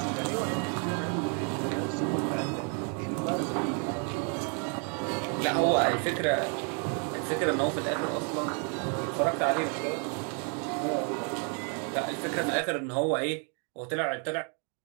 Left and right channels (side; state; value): left; quieter; 39.6 dB